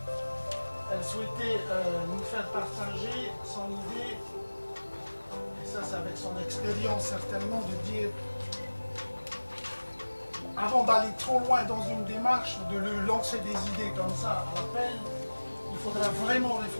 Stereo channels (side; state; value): both; inverted; correlation -1.00